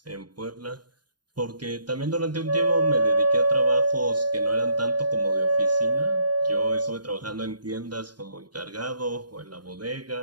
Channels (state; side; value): late; left; 0.70 ms